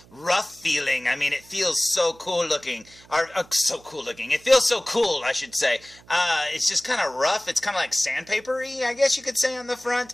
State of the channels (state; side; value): noise; right; hum, 25 dB below the sound